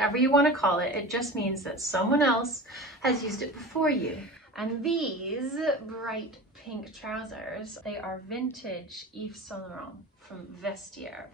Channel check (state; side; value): normal; both; correlation 0.33